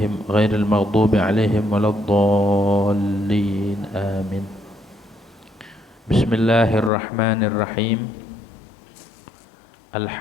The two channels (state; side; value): drops out; right; at 6.9 s